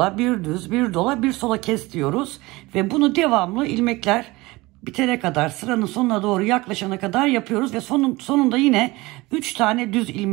1 düz, 1 dola, 1 sola kes diyoruz. Ve bunu devamlı ilmekler bitene kadar, sıranın sonuna doğru yaklaşana kadar yapıyoruz ve sonunda yine 3 tane düz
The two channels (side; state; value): left; quieter; 21.4 dB